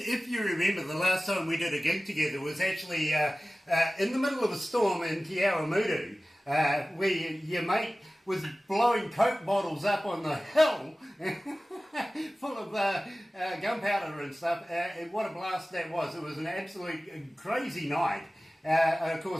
you remember, the last time we did a gig together was actually in the middle of a storm in Te Awamutu, where your mate was blowing Coke bottles up on the hill full of gunpowder and stuff, and what a blast that was. It was an absolute crazy night. Of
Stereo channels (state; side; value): normal; both; correlation 0.97